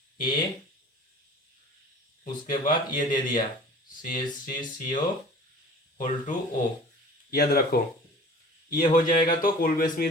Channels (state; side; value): normal; both; correlation 0.44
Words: A, उसके बाद ये दे दिया CH3CO2O, याद रखो ये हो जाएगा तो कोल्बे